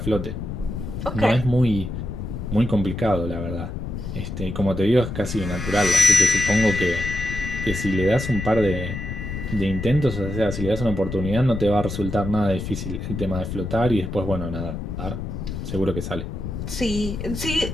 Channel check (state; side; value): noise; left; rumble, 6 dB below the sound